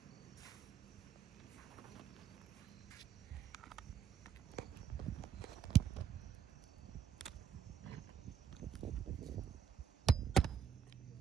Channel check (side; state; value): left; quieter; 7.9 dB